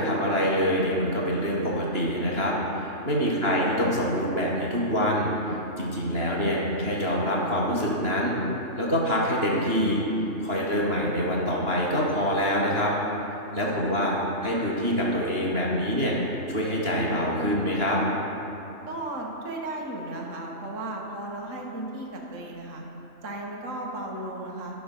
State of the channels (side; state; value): left; late; 2.9 ms